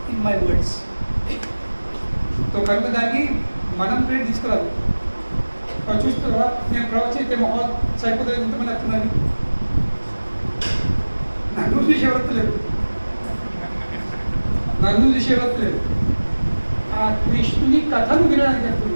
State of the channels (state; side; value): inverted; both; correlation -1.00